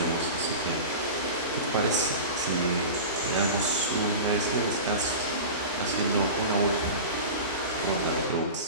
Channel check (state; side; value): inverted; both; correlation -0.31